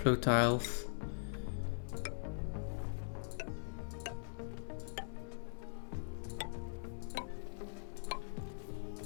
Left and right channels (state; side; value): silent; right; digital silence